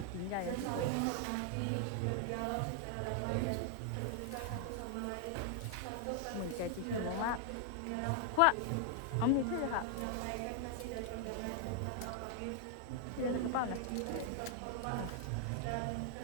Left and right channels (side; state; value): both; different; correlation 0.00